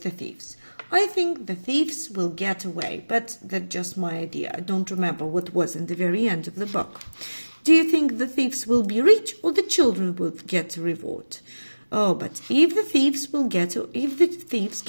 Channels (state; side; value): inverted; both; correlation -1.00